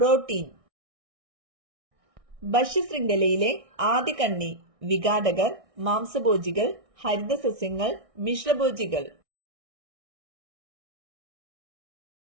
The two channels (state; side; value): late; left; 1.6 ms